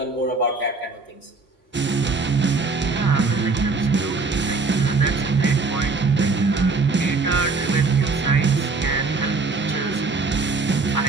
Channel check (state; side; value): quieter; left; 3.9 dB